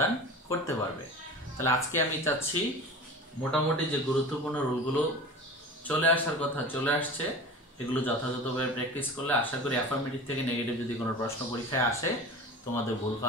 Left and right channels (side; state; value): both; normal; correlation 0.35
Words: করতে পারবে। তাহলে আজকে আমি চাচ্ছি মোটামুটি যে গুরুত্বপূর্ণ রুলগুলো চলে আসার কথা চলে আসছে, এগুলো যথাযথভাবে প্র্যাকটিস করলে আশা করি অ্যাফার্মেটিভ থেকে নেগেটিভ যদি কোনো প্রশ্ন পরীক্ষায় আসে তোমাদের ভুল